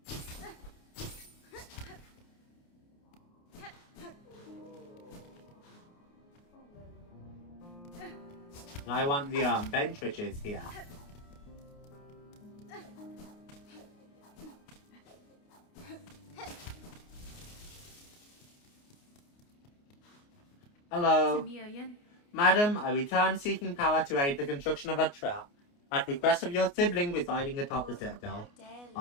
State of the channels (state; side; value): late; right; 29 ms